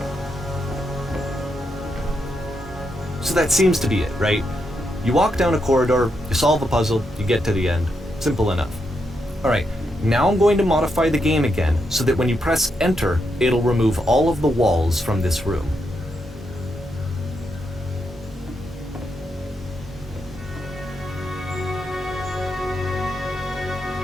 So that seems to be it, right? You walk down a corridor, you solve a puzzle, you get to the end. Simple enough. Alright, now I'm going to modify the game again so that when you press enter, it'll remove all of the walls from this room.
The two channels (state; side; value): normal; both; correlation 0.82